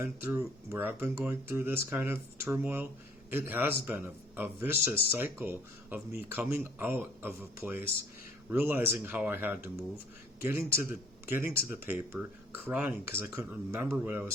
going through this kind of turmoil, it has been a vicious cycle of me coming out of a place, realizing how I had to move, getting to the paper, crying because I couldn't remember what I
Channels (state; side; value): normal; both; correlation 0.57